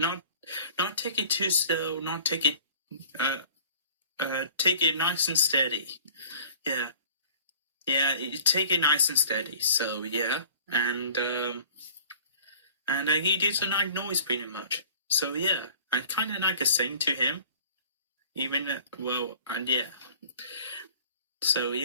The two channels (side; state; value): both; inverted; correlation -0.48